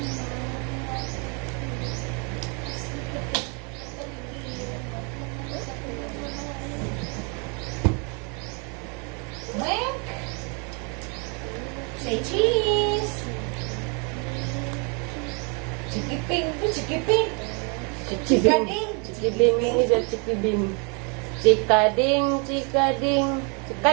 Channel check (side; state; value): left; quieter; 35.4 dB